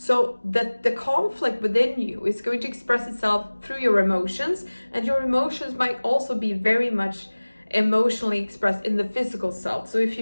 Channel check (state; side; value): inverted; both; correlation -1.00